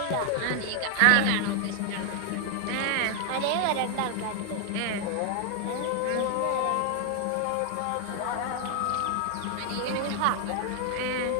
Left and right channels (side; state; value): both; different; correlation 0.00